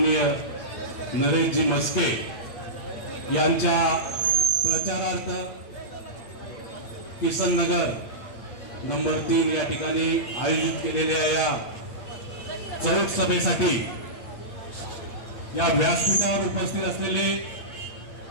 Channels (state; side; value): late; right; 8.8 ms